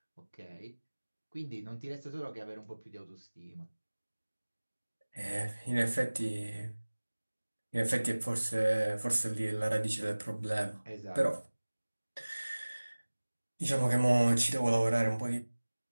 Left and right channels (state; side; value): inverted; both; correlation -1.00